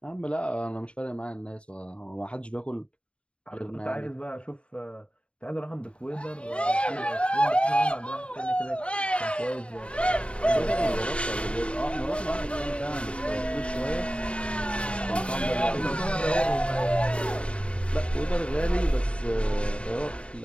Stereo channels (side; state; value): right; late; 0.058 ms